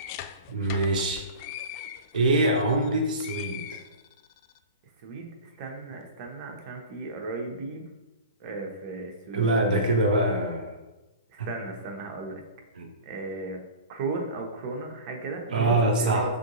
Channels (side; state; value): both; inverted; correlation -0.32